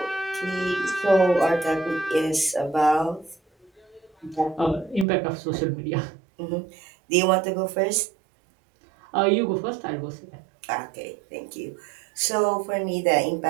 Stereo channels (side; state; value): left; drops out; at 5.1 s